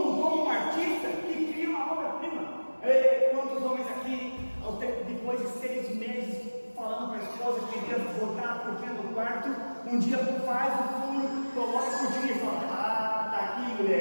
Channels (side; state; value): both; inverted; correlation -1.00